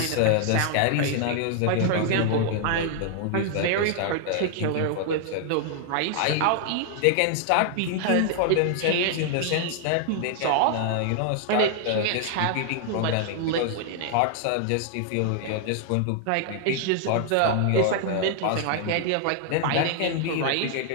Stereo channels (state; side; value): different; both; correlation 0.00